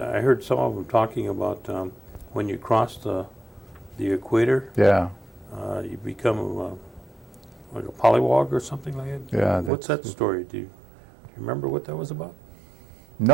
heard some of them talking about when you cross the equator, Yeah. you become like a pollywog or something like that. Yeah. What's that story? Do you remember what that was about?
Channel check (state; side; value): drops out; left; at 9.7 s